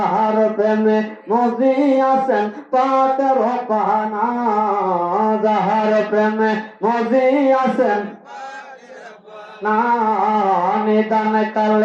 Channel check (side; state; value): both; identical; correlation 1.00